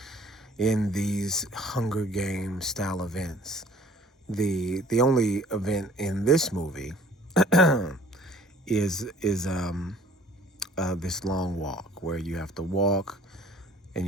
in these Hunger Games style events. The only event in this movie is this long walk where you have to walk, and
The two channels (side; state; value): both; normal; correlation 0.54